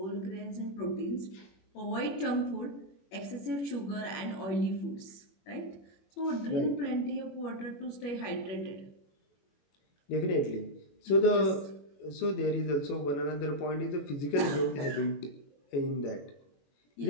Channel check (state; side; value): late; right; 21 ms